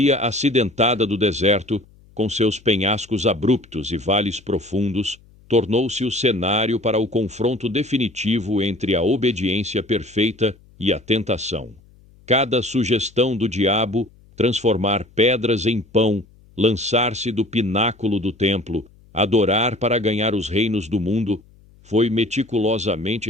acidentada do deserto, com seus penhascos abruptos e vales profundos, tornou-se o cenário para o confronto definitivo entre a obediência perfeita e a tentação. Cada sugestão do diabo, transformar pedras em pão, lançar-se do pináculo do templo, adorar para ganhar os reinos do mundo, foi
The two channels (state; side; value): noise; left; hum, 27 dB below the sound